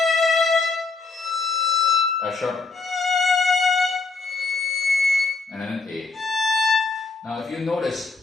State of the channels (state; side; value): quieter; right; 4.1 dB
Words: F sharp. And then an A. Now, if you